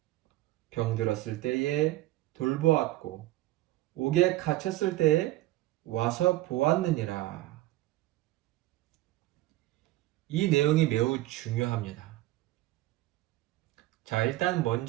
병들었을 때에 돌보았고 옥에 갇혔을 때에 와서 보았느니라. 이 내용이 매우 중요합니다. 자, 일단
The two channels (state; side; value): quieter; left; 16.6 dB